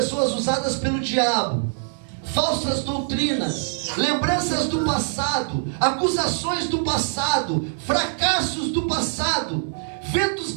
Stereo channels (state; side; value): silent; left; digital silence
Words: usadas pelo diabo, falsas doutrinas, lembranças do passado, acusações do passado, fracassos do passado, ventos